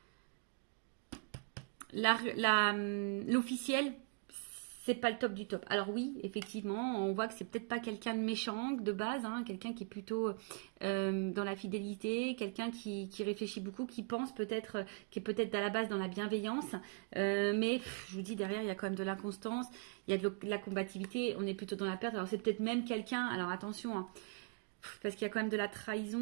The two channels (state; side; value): quieter; left; 36.4 dB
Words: L'officiel, c'est pas le top du top. Alors oui, effectivement, on voit que c'est peut-être pas quelqu'un de méchant de base, hein, quelqu'un qui est plutôt dans la fidélité, quelqu'un qui réfléchit beaucoup, qui pense peut-être, qui est peut-être à la base dans la bienveillance, mais je vous dis derrière il y a quand même de l'inconstance, il y a de la combativité, on est plutôt dans la perte. Alors c'est peut-être même quelqu'un, alors attention, hein, parce qu'il y a quand même de la